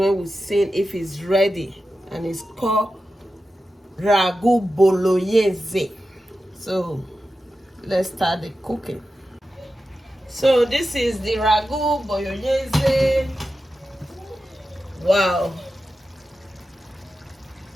we see if it's ready, and it's called Ragù Bolognese. So let's start the cooking. So this is the Ragù Bolognese. Wow.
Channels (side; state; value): both; normal; correlation 0.92